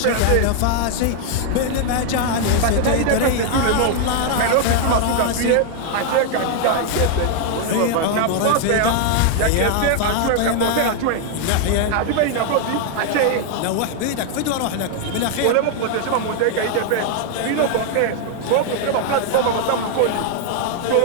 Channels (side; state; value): both; different; correlation 0.00